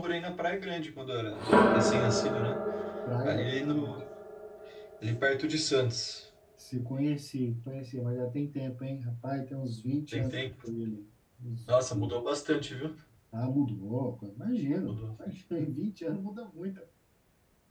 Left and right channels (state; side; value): identical; both; correlation 1.00